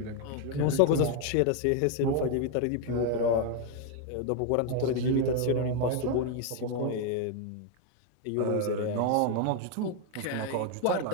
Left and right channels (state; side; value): different; both; correlation 0.01